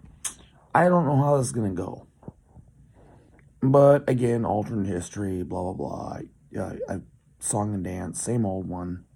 I don't know how this is going to go. But again, alternate history, blah, blah, blah. Song and dance, same old one.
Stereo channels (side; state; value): both; identical; correlation 1.00